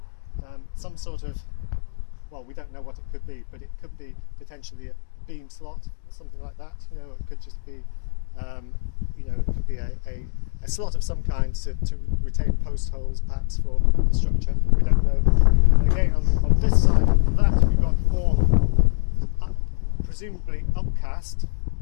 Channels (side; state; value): right; silent; 59 dB below the other